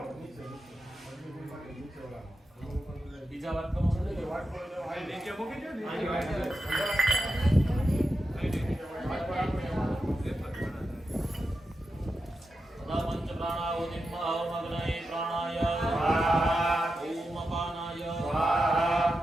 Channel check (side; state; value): both; normal; correlation 0.89